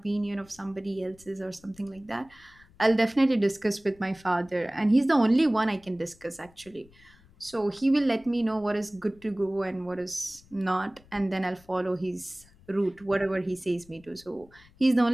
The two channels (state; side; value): noise; left; rumble, 27 dB below the sound